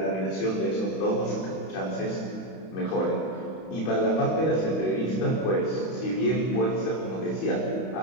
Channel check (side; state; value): right; late; 31 ms